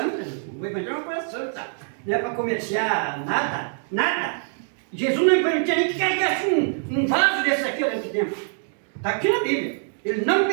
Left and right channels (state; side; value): silent; left; 62 dB below the other